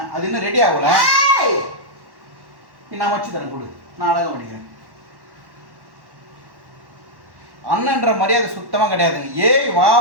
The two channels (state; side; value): late; left; 1.1 ms